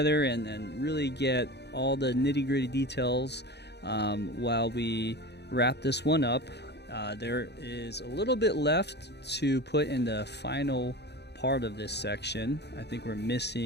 and really get all the nitty-gritty details while we wrap this one up. There is a little bit left to put in the final part of this section. I think we're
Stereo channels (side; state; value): right; late; 0.49 ms